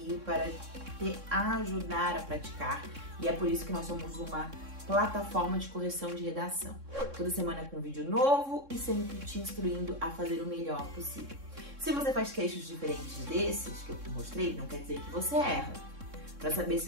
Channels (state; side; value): late; left; 3.6 ms